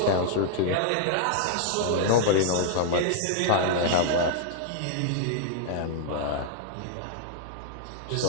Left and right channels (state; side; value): different; both; correlation -0.01